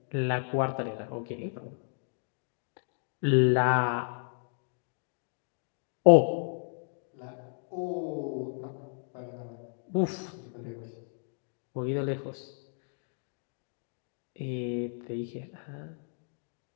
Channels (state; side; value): silent; right; digital silence